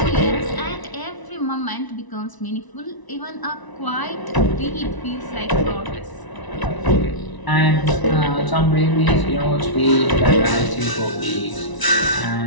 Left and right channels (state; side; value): late; right; 1.0 ms